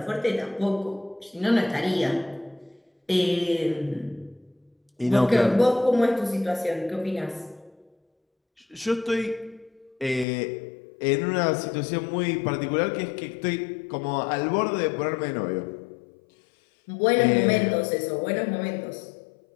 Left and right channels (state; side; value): drops out; right; at 10.2 s